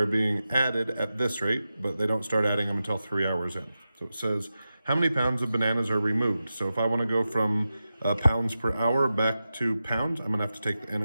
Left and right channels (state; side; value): inverted; both; correlation -0.92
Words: being added at this rate, but they don't start adding them until 3 hours in. So it says, how many pounds of bananas are removed? So if I want to go from pounds per hour back to pounds, I'm going to have to take the